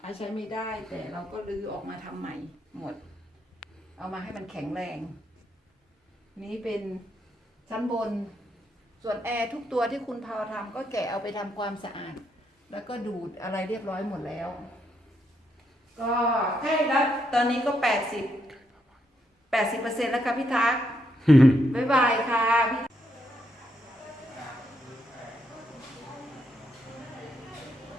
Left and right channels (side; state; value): both; normal; correlation 0.78